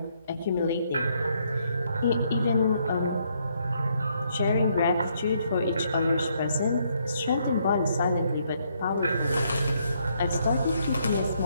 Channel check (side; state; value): both; inverted; correlation -0.72